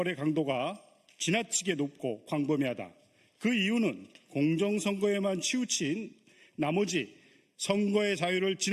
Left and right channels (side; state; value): both; identical; correlation 1.00